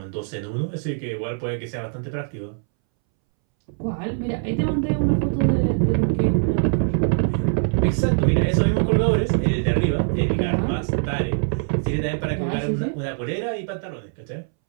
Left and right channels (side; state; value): left; silent; 64 dB below the other